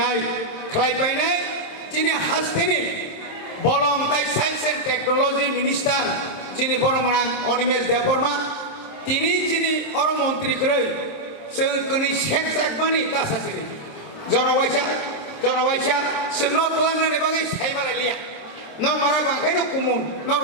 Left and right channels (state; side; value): late; right; 27 ms